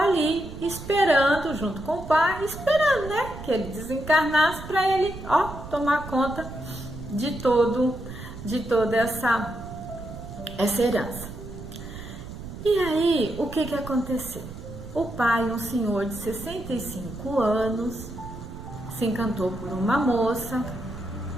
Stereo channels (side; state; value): right; noise; rumble, 12 dB below the sound